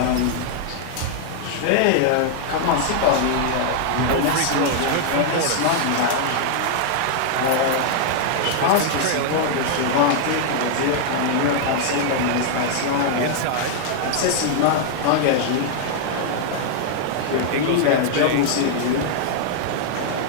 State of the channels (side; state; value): both; different; correlation -0.01